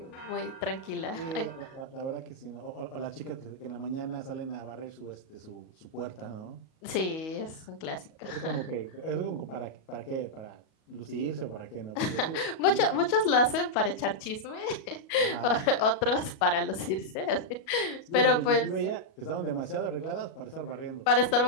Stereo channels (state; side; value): late; right; 37 ms